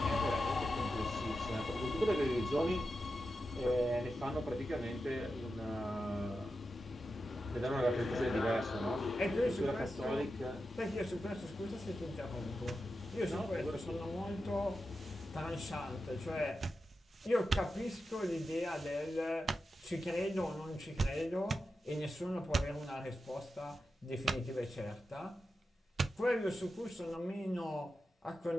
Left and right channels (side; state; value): both; normal; correlation 0.90